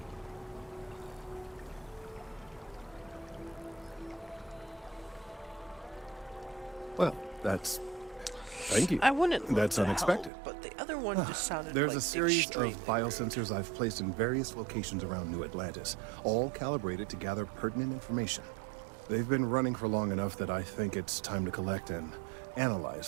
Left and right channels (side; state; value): left; drops out; at 10.3 s